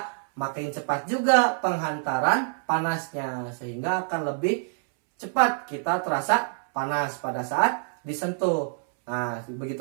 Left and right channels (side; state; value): left; silent; 61 dB below the other